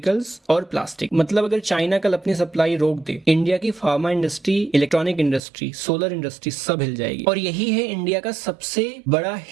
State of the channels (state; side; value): drops out; left; at 5.4 s